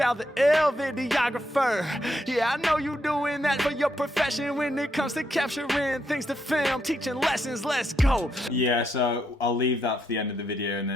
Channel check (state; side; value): normal; both; correlation 0.79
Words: the ill videographer. Yeah, I know you doing that for your profession when it comes to capturing things to film, teaching lessons. Let's go. Yeah, so I'll leave that for the end of the video, and